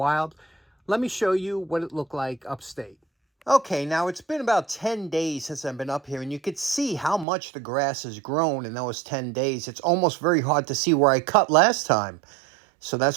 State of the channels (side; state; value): left; drops out; at 7.2 s